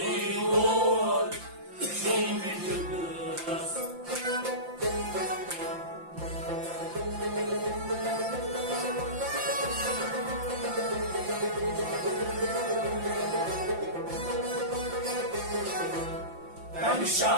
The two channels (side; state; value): left; late; 5.8 ms